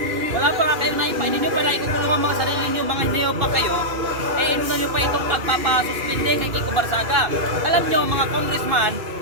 Wala pa nga kayong naipa. Hindi nyo pa naikukulong ang mga sarili nyo, mga hindi pa kayo. Inuna nyo pa itong pagpapasuspindi kay Kiko Barsaga. Alam nyo, mga congressman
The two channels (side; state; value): left; late; 2.5 ms